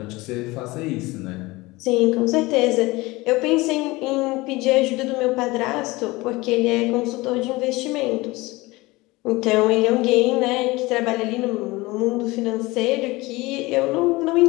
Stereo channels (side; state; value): right; quieter; 21.6 dB